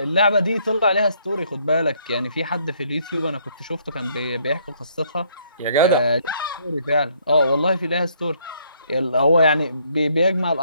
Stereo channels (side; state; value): both; inverted; correlation -0.67